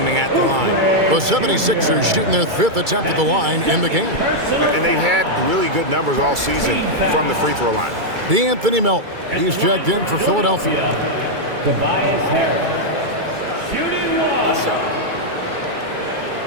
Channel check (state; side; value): late; left; 2.3 ms